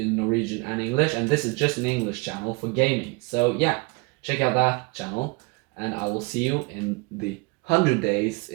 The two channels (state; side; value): quieter; left; 28.1 dB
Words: Norwegian and English, and this is just an English channel for gaming. So yeah, check out that channel, and I will see you in the 100 days